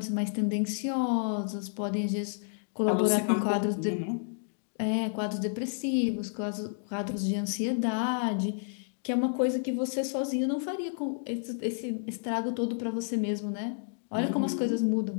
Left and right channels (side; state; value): right; silent; digital silence